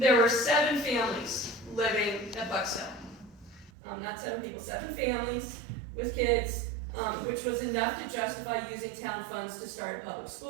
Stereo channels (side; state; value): left; drops out; at 3.7 s